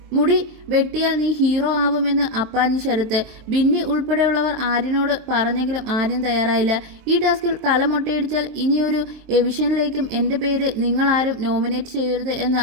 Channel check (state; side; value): late; left; 23 ms